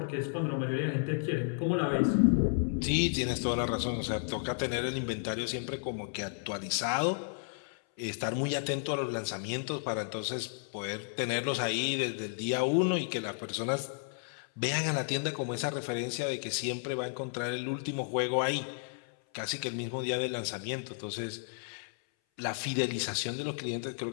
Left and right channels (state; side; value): silent; right; 56 dB below the other